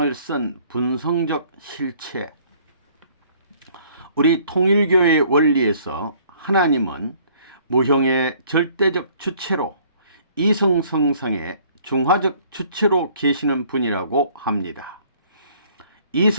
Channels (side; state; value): both; inverted; correlation -0.58